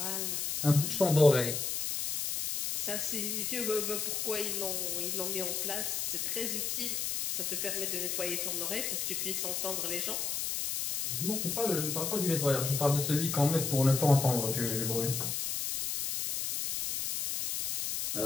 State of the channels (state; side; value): noise; left; hiss, 1 dB below the sound